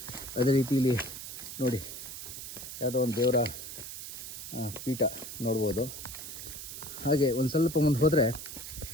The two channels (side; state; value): right; noise; hiss, 9 dB below the sound